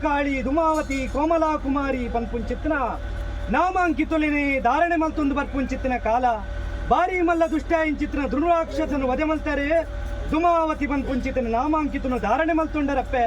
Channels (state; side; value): identical; both; correlation 1.00